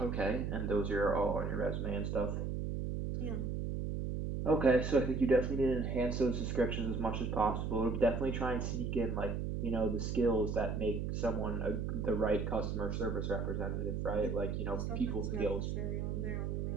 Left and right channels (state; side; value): noise; right; hum, 2 dB below the sound